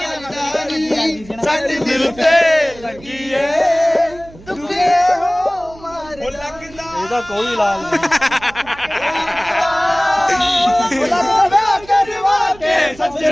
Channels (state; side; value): noise; right; hum, 21 dB below the sound